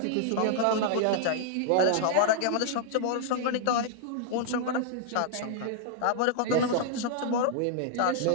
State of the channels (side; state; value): both; different; correlation -0.01